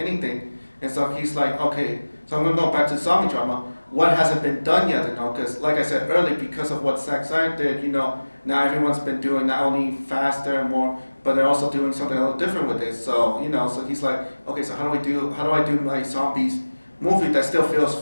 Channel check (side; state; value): both; inverted; correlation -1.00